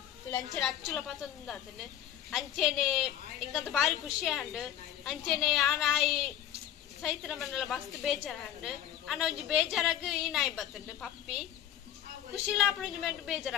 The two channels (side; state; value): right; quieter; 11.0 dB